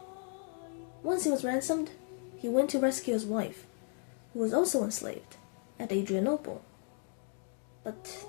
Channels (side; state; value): right; quieter; 38.0 dB